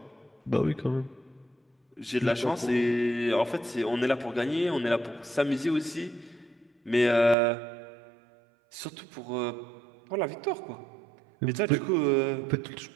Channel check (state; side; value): drops out; left; at 7.4 s